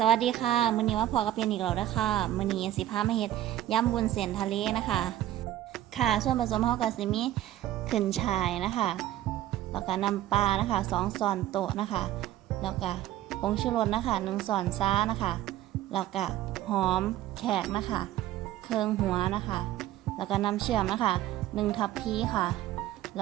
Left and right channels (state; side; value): quieter; left; 13.6 dB